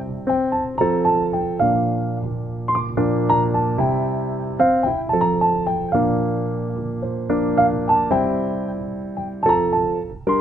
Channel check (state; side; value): normal; both; correlation 0.79